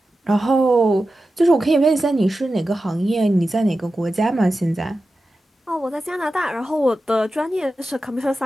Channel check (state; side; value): normal; both; correlation 0.93